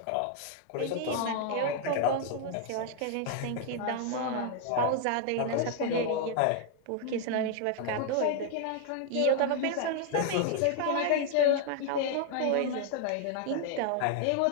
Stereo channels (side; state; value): both; different; correlation 0.00